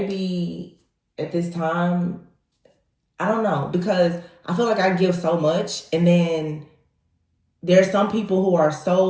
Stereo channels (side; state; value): both; identical; correlation 1.00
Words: at this time, I don't know, because I feel like I give so much, and then there's some people who are